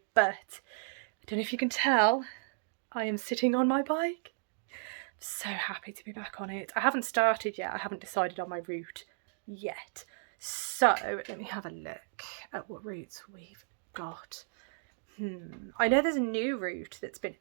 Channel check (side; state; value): left; silent; digital silence